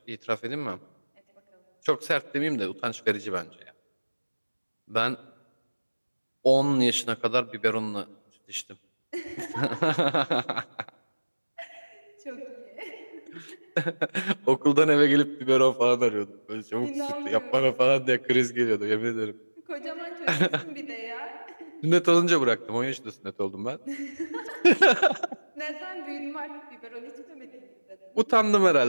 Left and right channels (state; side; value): inverted; both; correlation -1.00